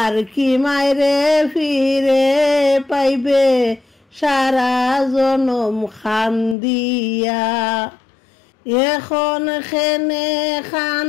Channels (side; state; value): right; drops out; at 6.6 s